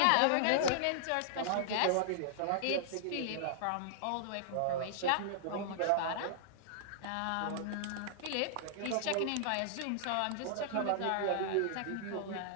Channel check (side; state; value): both; different; correlation -0.01